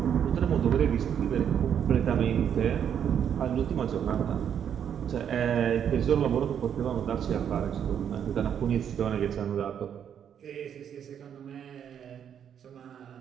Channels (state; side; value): quieter; left; 8.7 dB